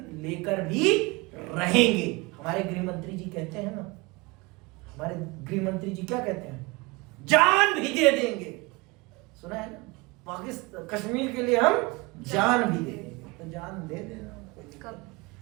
लेकर भी रहेंगे। हमारे गृह मंत्री जी कहते हैं ना, हमारे गृह मंत्री जी क्या कहते हैं? जान भी दे देंगे। सुना है ना? पाकिस्तान कश्मीर के लिए हम जान भी दे देंगे। तो जान दे देना।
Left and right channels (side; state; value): left; quieter; 25.1 dB